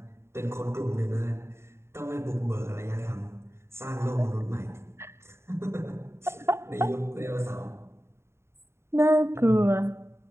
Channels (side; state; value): left; late; 0.13 ms